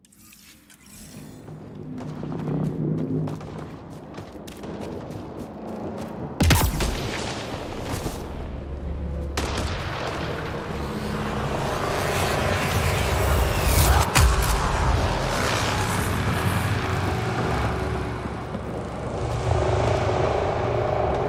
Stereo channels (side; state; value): both; identical; correlation 1.00